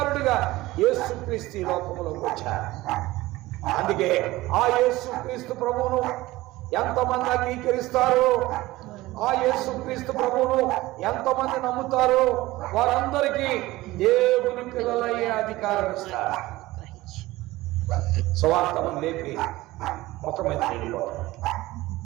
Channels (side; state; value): left; quieter; 18.4 dB